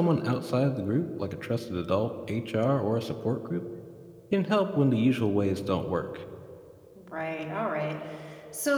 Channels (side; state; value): both; identical; correlation 1.00